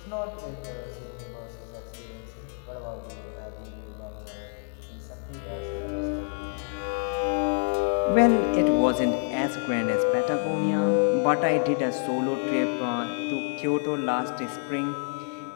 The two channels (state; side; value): silent; right; digital silence